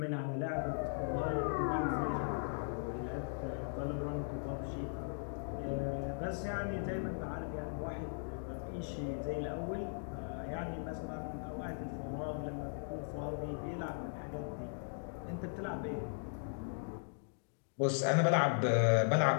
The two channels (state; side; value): silent; right; digital silence